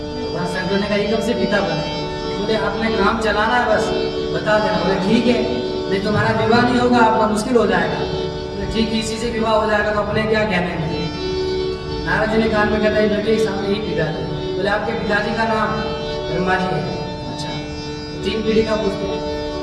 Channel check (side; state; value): both; identical; correlation 1.00